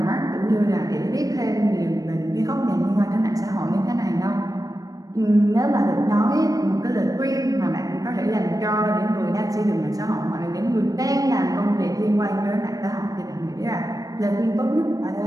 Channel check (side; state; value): left; late; 0.17 ms